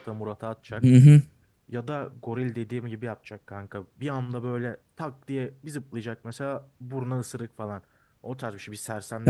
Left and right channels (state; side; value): identical; both; correlation 1.00